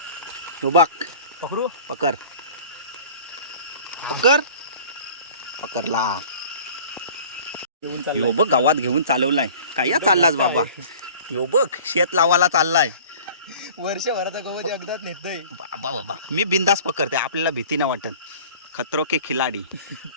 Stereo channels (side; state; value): both; inverted; correlation -0.45